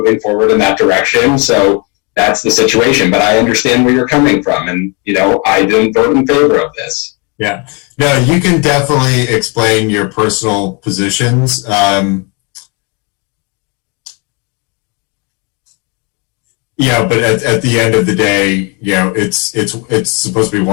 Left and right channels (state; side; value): quieter; right; 32.4 dB